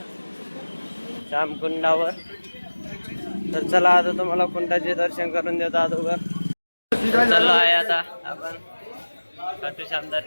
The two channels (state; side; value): inverted; both; correlation -1.00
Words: श्याम कुंडावर. तर चला आता तुम्हाला कुंडाचे दर्शन करून देतो अगोदर. चाललो आहे आता आपण खाटू श्याम